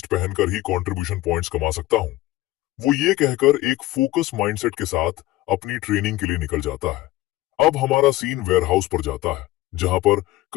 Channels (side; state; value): right; quieter; 17.1 dB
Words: पहनकर ही कंट्रीब्यूशन पॉइंट्स कमा सकता हूं। वो ये कहकर एक फोकस माइंडसेट के साथ अपनी ट्रेनिंग के लिए निकल जाता है। अब हमारा सीन वेयरहाउस पर जाता है, जहां पर